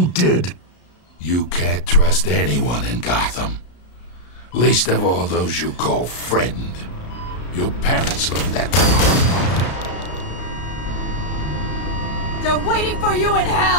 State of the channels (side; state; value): right; late; 33 ms